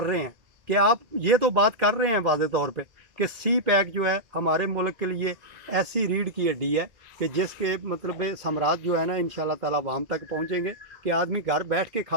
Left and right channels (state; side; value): late; left; 2.3 ms